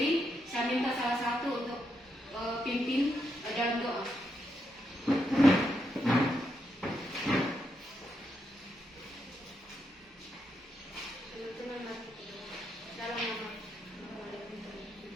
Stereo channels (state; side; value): normal; both; correlation 0.82